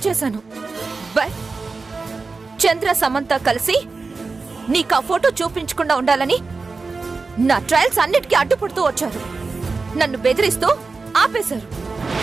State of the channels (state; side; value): quieter; left; 4.2 dB